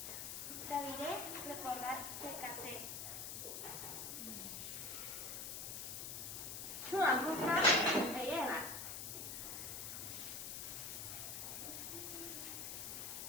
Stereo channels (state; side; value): noise; left; hiss, 5 dB below the sound